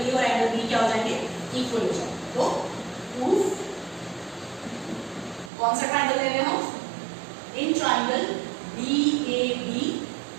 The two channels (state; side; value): drops out; left; at 5.5 s